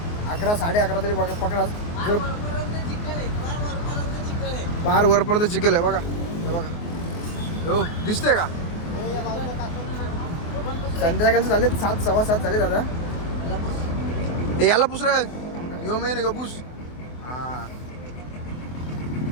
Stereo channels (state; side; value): late; right; 24 ms